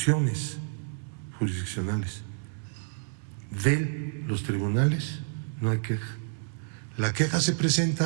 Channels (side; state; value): left; silent; 58 dB below the other